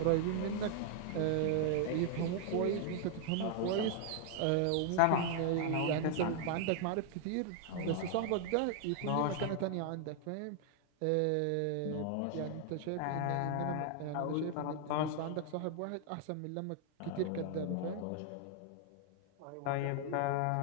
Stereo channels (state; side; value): different; both; correlation 0.00